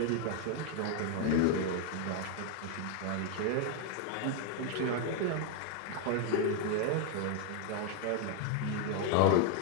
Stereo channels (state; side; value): different; both; correlation 0.01